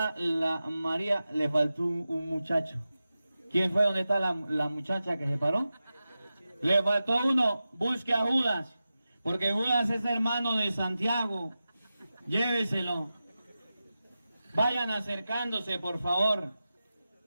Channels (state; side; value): inverted; both; correlation -0.93